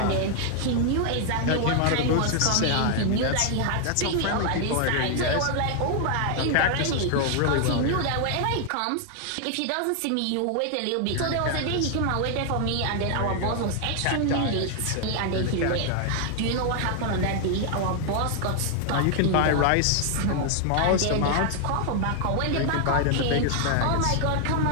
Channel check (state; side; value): different; both; correlation 0.00